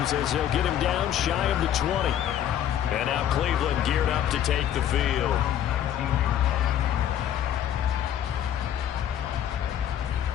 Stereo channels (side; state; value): right; quieter; 10.5 dB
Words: as they'll get him down shy of the 20. And now Cleveland geared up to take the field.